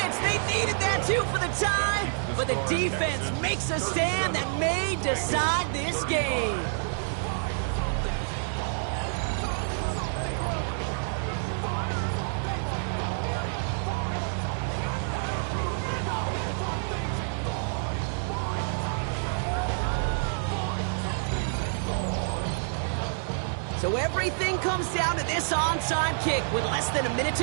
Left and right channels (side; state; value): left; silent; digital silence